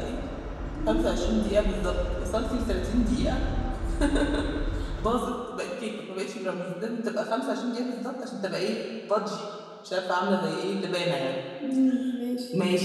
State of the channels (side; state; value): both; identical; correlation 1.00